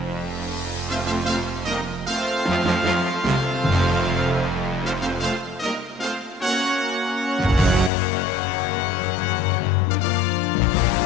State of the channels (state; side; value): drops out; right; at 7.9 s